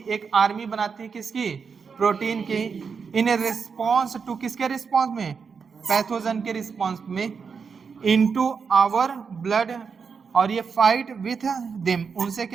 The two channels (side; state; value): left; quieter; 5.7 dB